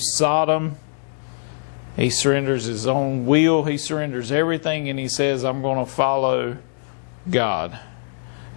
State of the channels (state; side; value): silent; right; 64 dB below the other